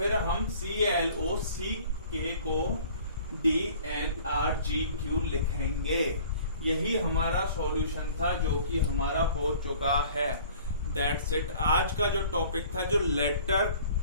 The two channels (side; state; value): both; inverted; correlation -0.50